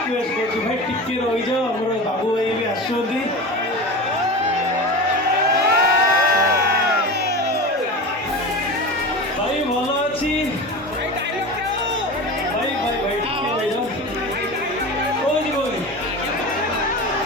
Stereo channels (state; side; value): normal; both; correlation 0.28